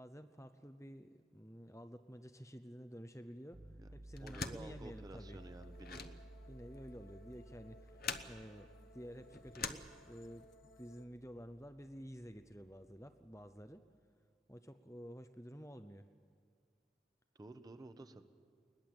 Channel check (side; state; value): both; normal; correlation 0.70